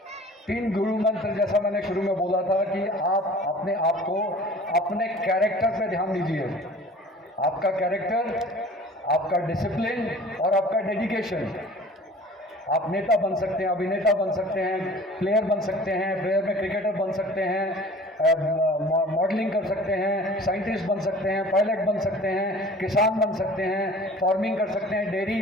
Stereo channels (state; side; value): normal; both; correlation 0.45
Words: 3 गुरु मंत्र, जैसा मैंने शुरू में बोला था कि आप अपने आप को, अपने कैरेक्टर पे ध्यान दीजिए। आपका कैरेक्टर, आपका डिसिप्लिन और आपका डेडिकेशन। आप नेता बन सकते हैं, अभिनेता बन सकते हैं, प्लेयर बन सकते हैं, प्लेयर में क्रिकेटर बन सकते हैं, मॉडलिंग कर सकते हैं, साइंटिस्ट बन सकते हैं, पायलट बन सकते हैं, किसान बन सकते हैं, फार्मिंग कर सकते हैं, डेयरी